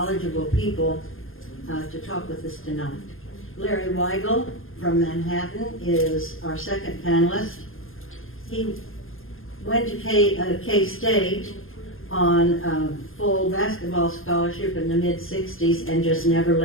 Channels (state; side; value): late; right; 0.60 ms